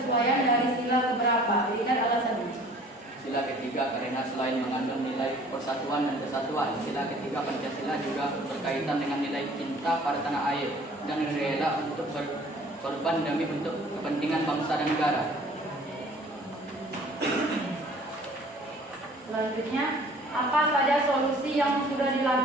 dari sila keberapa? Berikan alasannya. Sila ketiga karena selain mengandung nilai persatuan dan kesatuan, sila ketiga Pancasila juga berkaitan dengan nilai cinta pada tanah air dan rela untuk berkorban demi untuk kepentingan bangsa dan negara. Selanjutnya, apa saja solusi yang sudah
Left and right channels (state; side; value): normal; both; correlation 0.51